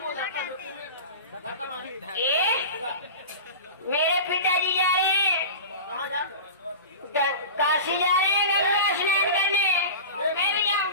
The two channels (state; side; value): inverted; both; correlation -0.31